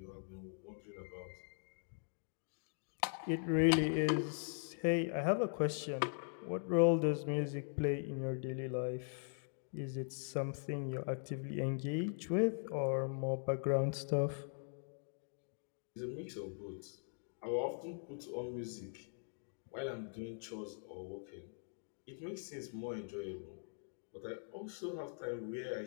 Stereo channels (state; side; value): silent; right; digital silence